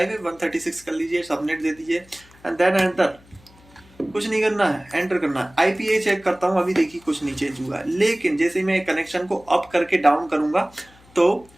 है, 136 कर लीजिए, सबनेट दे दीजिए एंड देन एंटर। कुछ नहीं करना है, एंटर करना है। IPA चेक करता हूँ, अभी देखिए कुछ नहीं चेंज हुआ है, लेकिन जैसे ही मैं कनेक्शन को अप करके डाउन करूंगा तो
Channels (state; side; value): noise; left; hum, 27 dB below the sound